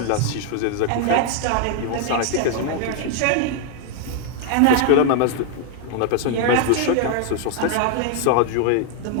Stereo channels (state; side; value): different; both; correlation 0.00